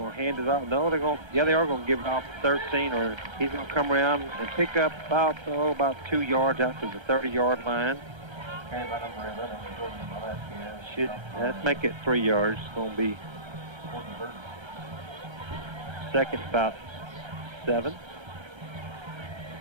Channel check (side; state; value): left; late; 1.3 ms